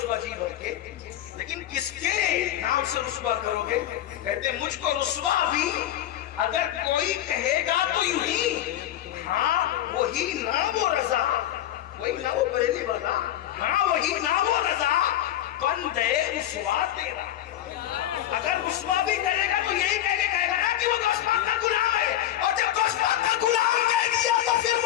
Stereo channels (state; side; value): quieter; right; 12.6 dB